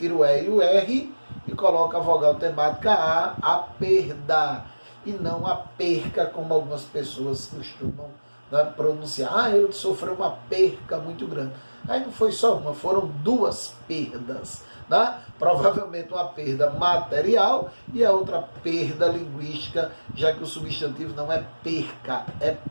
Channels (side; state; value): both; inverted; correlation -1.00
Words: o E e o R e coloco a vogal temática a perda. E não a perca, como algumas pessoas costumam, né, pronunciar. Ah, ele sofreu uma perca muito grande. Aí não foi só uma, foram duas perdas. Né? Provavelmente uma perda material e a outra perda linguística, já que o substantivo não é perca, é